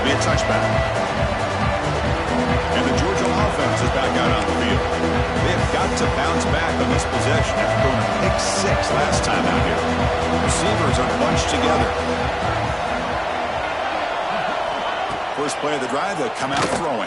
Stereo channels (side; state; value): both; identical; correlation 1.00